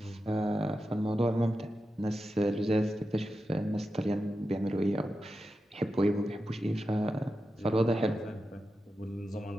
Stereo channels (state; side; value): normal; both; correlation 0.90